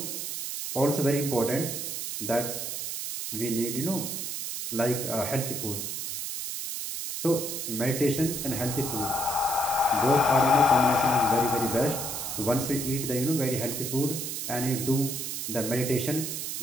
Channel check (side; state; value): right; noise; hiss, 4 dB below the sound